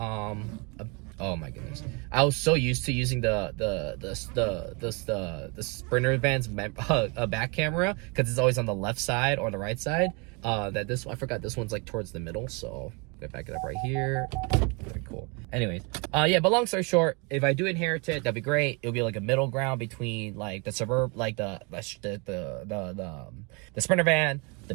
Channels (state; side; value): quieter; left; 31.3 dB